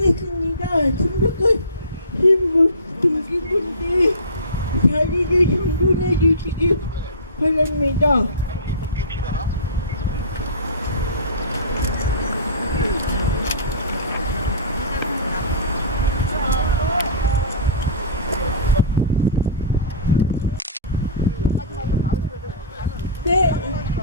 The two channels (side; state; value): both; inverted; correlation -0.33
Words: 참석하신 동기분들 자리를 정돈해 주시기 바랍니다. 네.